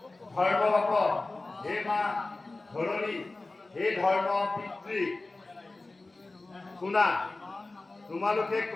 ধৰ্ম বাপ হে মা ধৰণী হে ধৰ্ম পিতৃ শুনা, তোমালোকে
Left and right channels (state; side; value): quieter; right; 3.2 dB